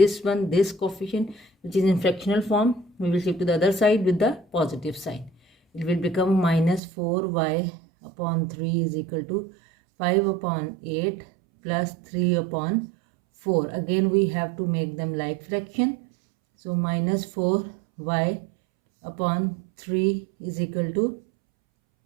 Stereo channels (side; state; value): left; drops out; at 6.8 s